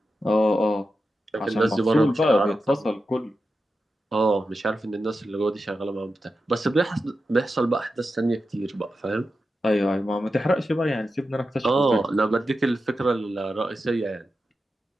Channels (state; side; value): normal; both; correlation 0.90